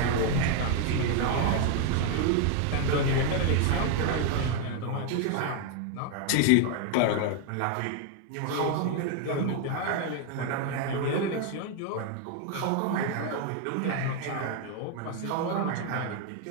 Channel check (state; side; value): different; both; correlation 0.01